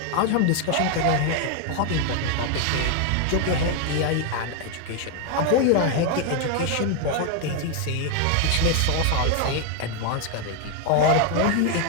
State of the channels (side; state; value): both; different; correlation 0.01